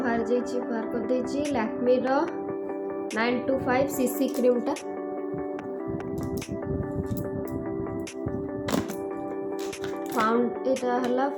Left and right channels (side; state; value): both; identical; correlation 1.00